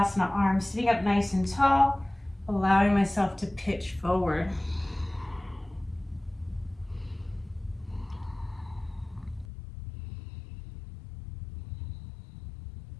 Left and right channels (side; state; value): right; drops out; at 9.5 s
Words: arm sitting up nice and tall, allowing myself to pitch forward.